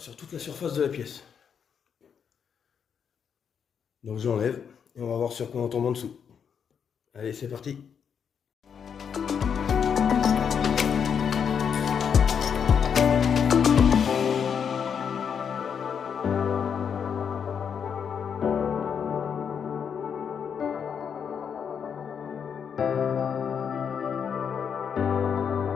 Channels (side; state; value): right; quieter; 7.3 dB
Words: toute la surface de la pièce. Donc j'enlève et on va voir sur quoi on tombe en dessous. Allez, c'est parti.